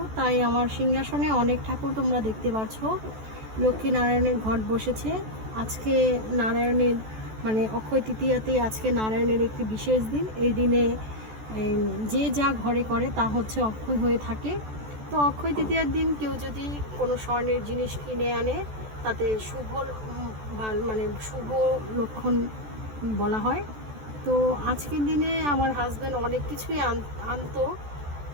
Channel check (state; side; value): late; left; 14 ms